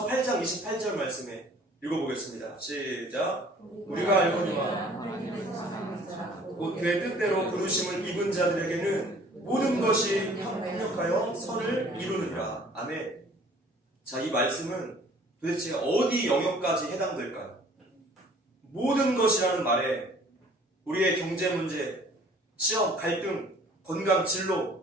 8장 28절 말씀에 읽어보겠습니다. 시작. 우리가 알거니와 곧 그의 뜻대로 부르심을 입은 자들에게는 모든 것이 협력하여 선을 이루느니라. 아멘. 자, 이 말씀은 도대체 어디 영역까지 해당될까요? 모든 것이라는 말에 우리의 경제 문제, 시험, 갈등, 건강,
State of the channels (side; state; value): both; normal; correlation 0.53